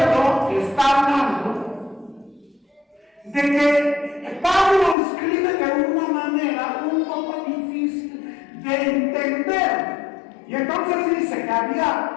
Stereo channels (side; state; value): right; drops out; at 5.0 s